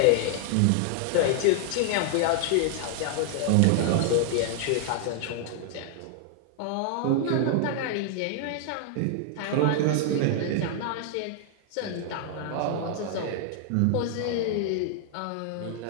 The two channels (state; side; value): different; both; correlation 0.00